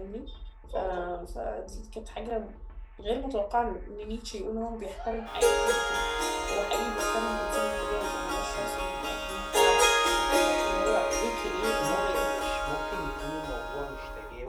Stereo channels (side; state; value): both; identical; correlation 1.00